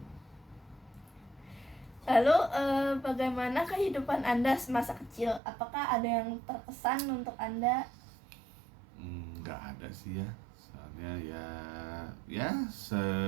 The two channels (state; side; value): drops out; left; at 5.4 s